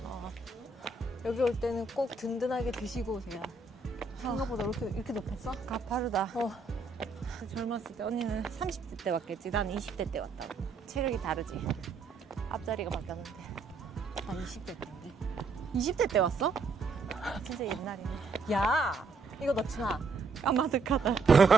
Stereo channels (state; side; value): quieter; left; 4.0 dB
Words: 여기 올 때는 꼭 든든하게 드시고 오세요. 생각보다 이렇게 높았어? 가파르다. 젊었을 때 언니는 30대 때 왔겠지. 난 20대 때 왔다고. 체력이 다르지. 앞자리가 바뀌었는데. 나 20대 때인데. 20대 때 왔어? 진짜 옛날이네. 야, 이거 넣지 마. 까마득하다.